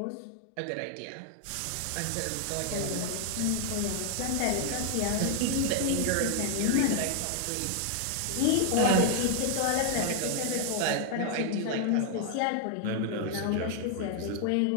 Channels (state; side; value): different; both; correlation 0.00